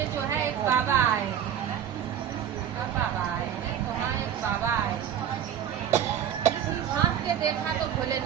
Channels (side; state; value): left; quieter; 9.6 dB